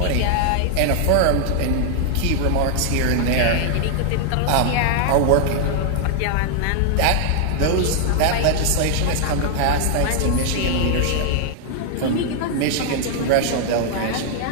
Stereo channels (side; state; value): both; different; correlation 0.00